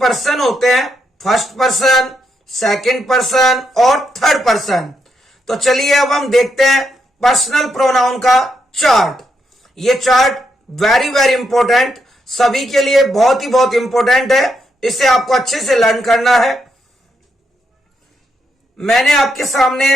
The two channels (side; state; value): both; normal; correlation 0.80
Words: होते हैं, फर्स्ट पर्सन, सेकंड पर्सन और थर्ड पर्सन। तो चलिए अब हम देखते हैं पर्सनल प्रोनाउन का चार्ट। ये चार्ट वेरी वेरी इंपॉर्टेंट, सभी के लिए बहुत ही बहुत इंपॉर्टेंट है, इसे आपको अच्छे से लर्न करना है। मैंने आपके